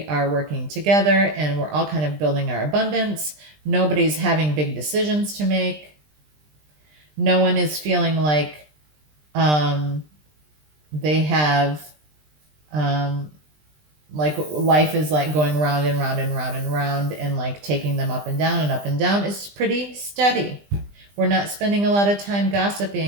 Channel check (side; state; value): left; late; 20 ms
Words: are working together, and we're all kind of building our abundance. Nobody's having big decisions to make. No one is feeling like they have like life is like going round and round and round and round and like taking them up and down and up and down. It's pretty steady. We're not spending a lot of time